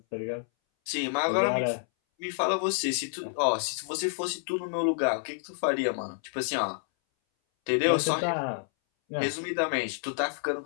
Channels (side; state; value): right; silent; 59 dB below the other